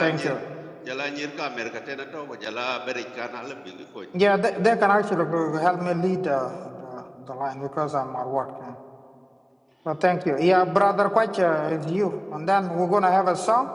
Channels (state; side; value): identical; both; correlation 1.00